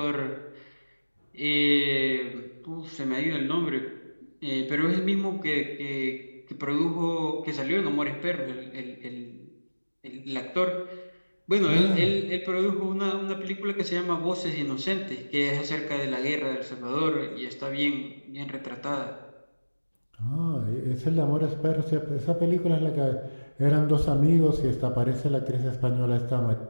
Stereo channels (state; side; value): inverted; both; correlation -1.00